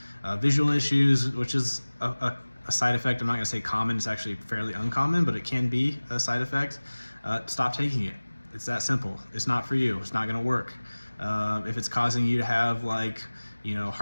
visual issues, which is a side effect, I'm not going to say common, it's actually fairly uncommon, but it can be a side effect, stop taking it. It's that simple. It's not for you. It's not going to work. If it's causing you to have like,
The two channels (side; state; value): both; inverted; correlation -1.00